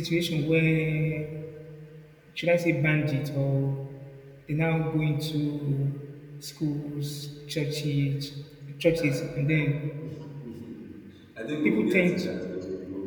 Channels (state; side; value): identical; both; correlation 1.00